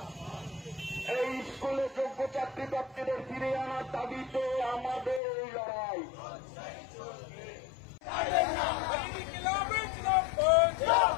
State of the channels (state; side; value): drops out; right; at 5.2 s